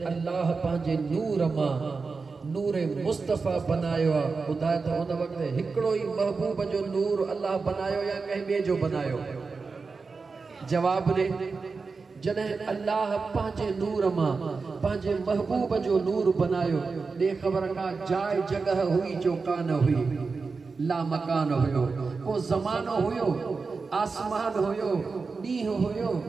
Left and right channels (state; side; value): quieter; left; 4.5 dB